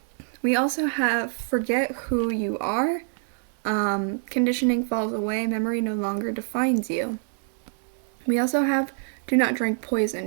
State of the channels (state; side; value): silent; left; 61 dB below the other